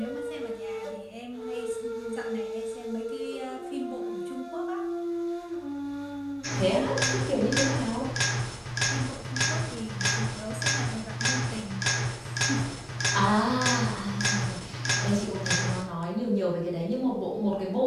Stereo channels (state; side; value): identical; both; correlation 1.00